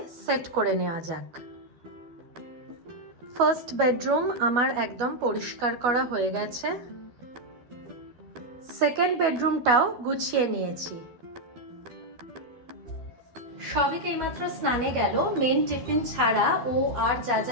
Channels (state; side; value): late; left; 12 ms